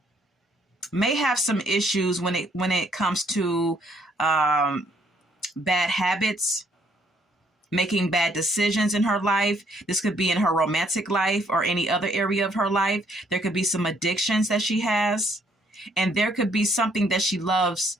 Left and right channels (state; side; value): normal; both; correlation 0.67